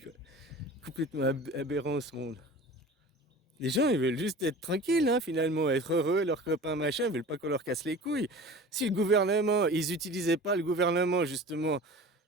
Complètement aberrant, ce monde. Les gens, ils veulent juste être tranquilles, hein, finalement, être heureux, leurs copains, machin, ils veulent pas qu'on leur casse les couilles. Si le gouvernement, ils utilisaient pas le gouvernement, justement,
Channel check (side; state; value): both; normal; correlation 0.39